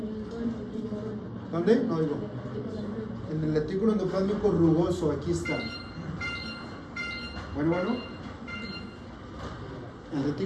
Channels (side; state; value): both; identical; correlation 1.00